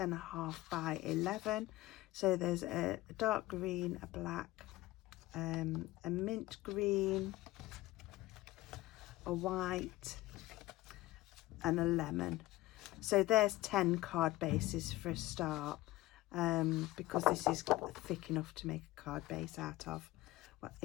by 11. So there's a dark green, a black, a mint green, a white, and a lemon. So there's 10 card bases for a start, because this is thick enough to make a card base out of. Well,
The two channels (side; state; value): right; quieter; 17.9 dB